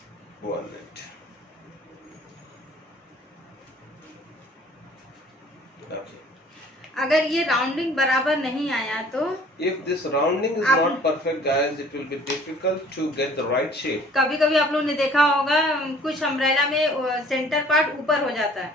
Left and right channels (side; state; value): both; normal; correlation 0.53